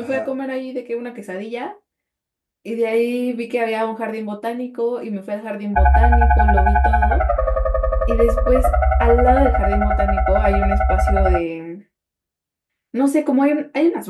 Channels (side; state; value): both; identical; correlation 1.00